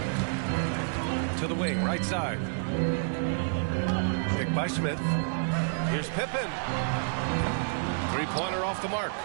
To the wing, right side. Picked by Smith. Here's Pippen. Three-pointer off the mark.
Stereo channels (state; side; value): silent; left; 58 dB below the other